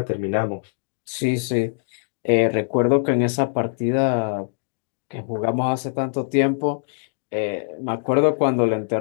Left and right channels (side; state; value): right; silent; digital silence